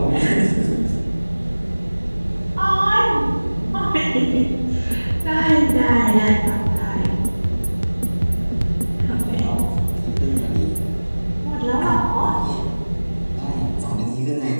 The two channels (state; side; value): inverted; both; correlation -1.00